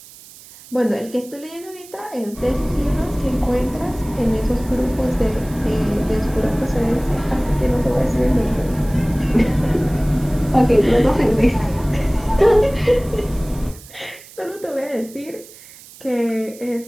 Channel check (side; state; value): right; noise; hiss, 20 dB below the sound